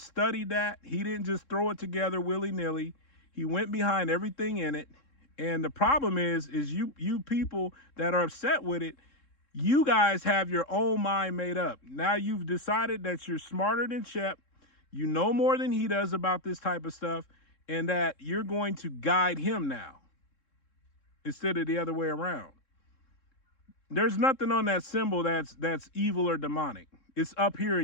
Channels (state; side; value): late; right; 3.7 ms